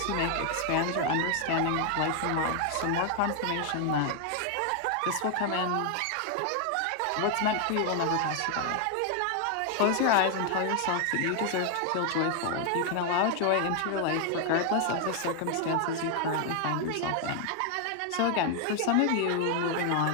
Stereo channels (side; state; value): both; different; correlation 0.00